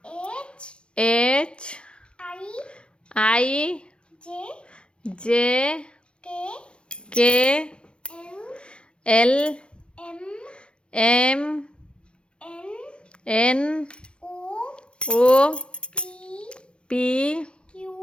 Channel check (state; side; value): late; right; 0.058 ms